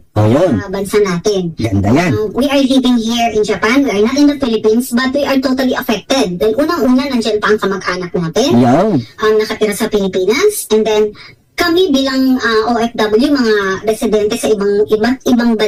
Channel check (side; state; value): both; identical; correlation 1.00